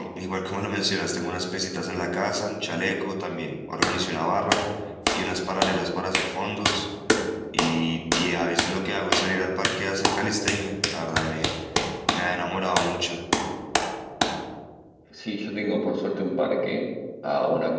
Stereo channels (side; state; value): both; identical; correlation 1.00